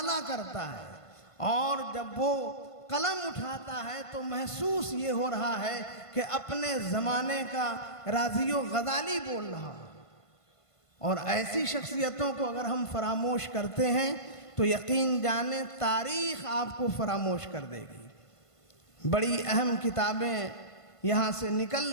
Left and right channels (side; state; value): right; late; 1.5 ms